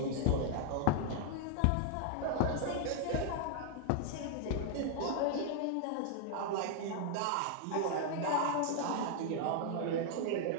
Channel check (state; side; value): different; both; correlation 0.00